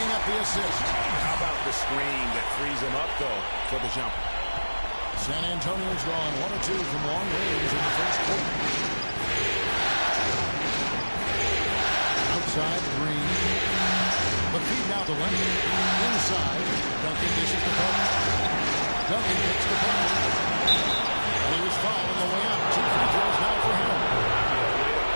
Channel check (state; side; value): inverted; both; correlation -1.00